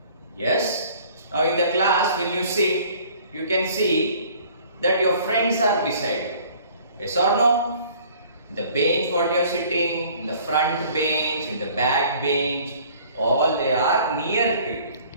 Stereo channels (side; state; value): both; inverted; correlation -0.53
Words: Yes, now in the class when you sit, you can see that your friends are beside you. Yes or no? In the bench what you are sitting, in the front bench, in the back bench, all they are near to you.